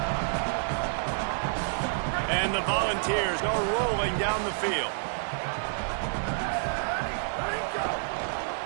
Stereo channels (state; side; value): silent; left; digital silence